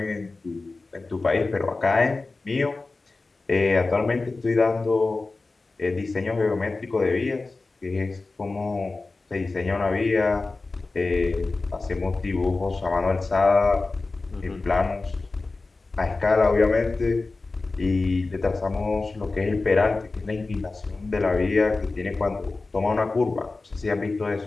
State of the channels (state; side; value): quieter; right; 3.6 dB